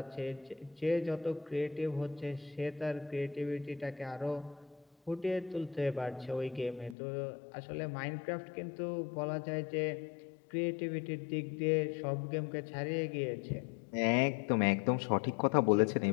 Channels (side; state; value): right; drops out; at 7.0 s